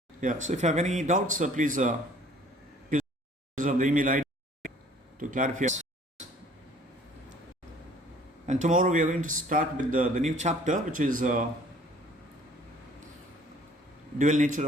Yeah, so if you have any doubts, please use of the email ID to clarify. And tomorrow we are going to start with the new chapter, which is dual nature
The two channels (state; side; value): normal; both; correlation 0.55